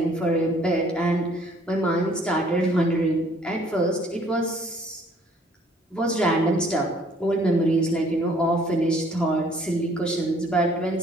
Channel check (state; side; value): normal; both; correlation 0.59